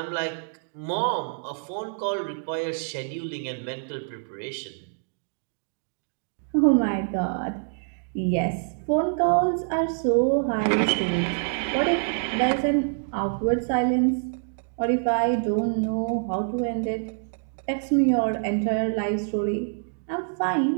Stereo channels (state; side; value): silent; left; digital silence